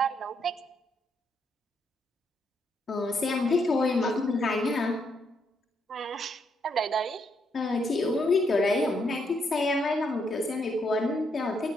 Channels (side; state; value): both; normal; correlation 0.76